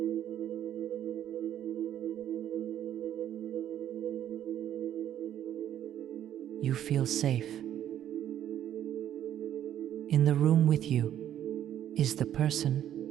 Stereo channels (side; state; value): left; quieter; 10.9 dB